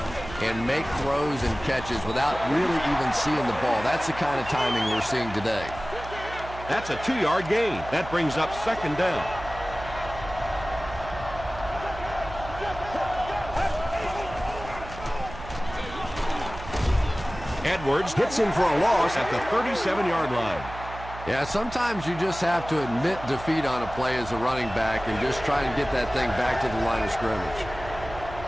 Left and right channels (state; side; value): noise; right; hum, 13 dB below the sound